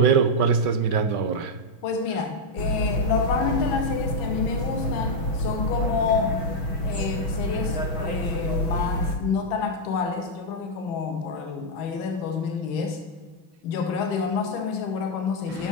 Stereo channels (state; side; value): late; right; 6.2 ms